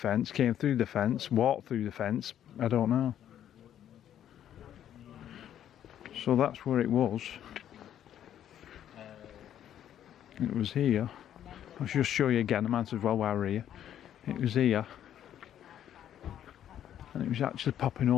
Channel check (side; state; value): right; quieter; 10.6 dB